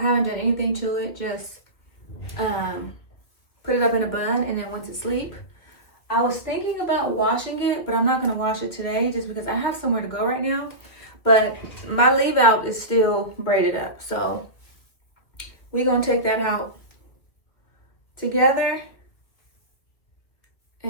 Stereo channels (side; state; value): right; late; 2.1 ms